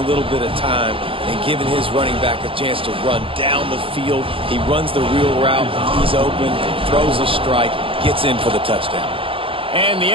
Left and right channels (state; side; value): late; left; 0.26 ms